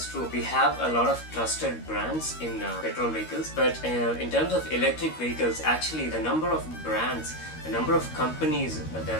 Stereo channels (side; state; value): right; late; 13 ms